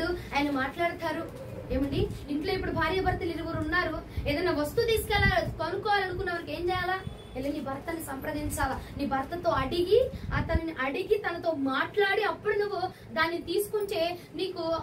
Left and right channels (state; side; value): identical; both; correlation 1.00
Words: ఆయన మాట్లాడతారు. ఏమండి, ఇంట్లో ఇప్పుడు భార్య భర్తలు 2 ఉన్నారు, ఏదైనా వస్తువు కొనుక్కోవాలనుకున్న వారికి ఏం చేయాలా? వెళ్ళి నీ భర్తని సంప్రదించాలా, నీ భర్తతో అడిగి తనతో మాట్లాడి అప్పుడు నువ్వు దాన్ని తీసుకుంటే నీకు